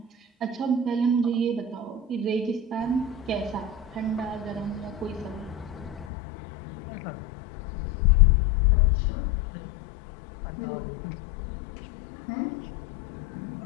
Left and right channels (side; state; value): right; drops out; at 6.1 s